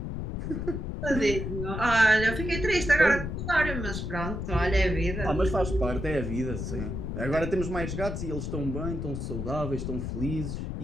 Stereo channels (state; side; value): noise; left; rumble, 4 dB below the sound